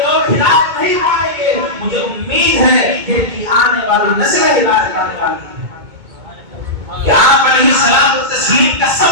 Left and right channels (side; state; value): left; late; 2.2 ms